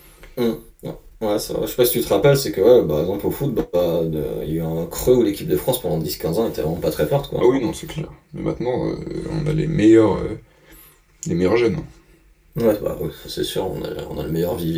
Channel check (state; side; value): identical; both; correlation 1.00